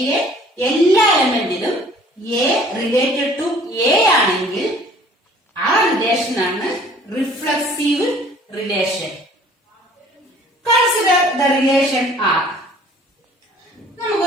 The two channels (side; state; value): both; normal; correlation 0.54